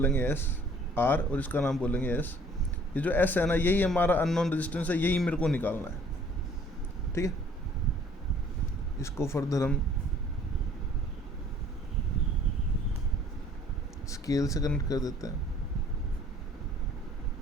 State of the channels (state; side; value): normal; both; correlation 0.56